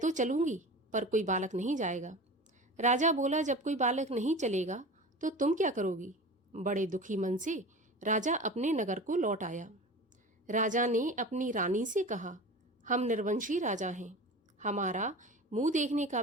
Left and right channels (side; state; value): both; normal; correlation 0.34